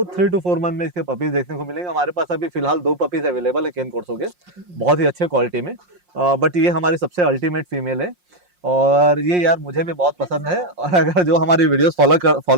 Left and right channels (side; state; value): left; late; 5.6 ms